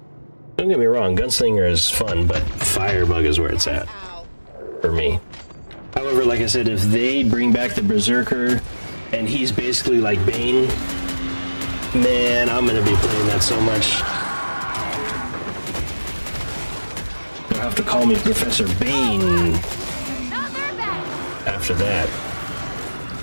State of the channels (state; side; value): inverted; both; correlation -1.00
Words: Don't get me wrong, Gunslinger is fun, but Firebug is where it's at. For me. However, like I said, if they bring back the Berserker, and he's basically like Bane, man, I'm gonna be playing that so much. You'll have to call me Professor Bane after that.